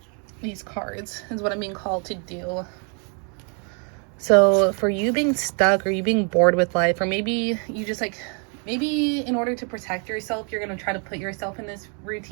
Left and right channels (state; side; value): quieter; left; 38.7 dB